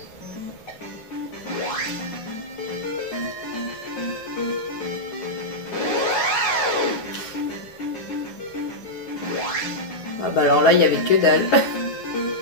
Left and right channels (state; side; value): late; right; 9.9 ms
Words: Ah bah alors là, il y avait que dalle.